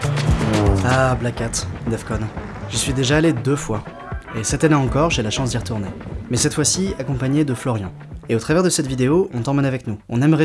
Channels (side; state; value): both; identical; correlation 1.00